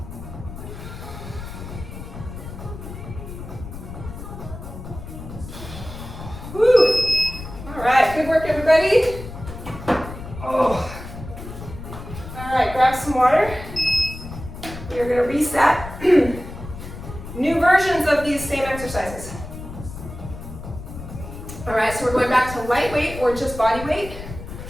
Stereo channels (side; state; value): left; noise; rumble, 11 dB below the sound